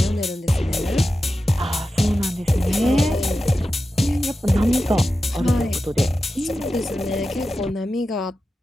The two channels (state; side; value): normal; both; correlation 0.92